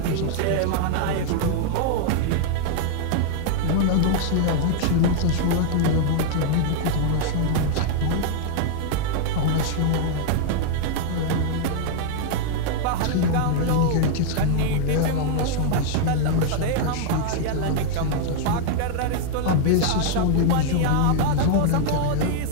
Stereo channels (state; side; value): different; both; correlation 0.00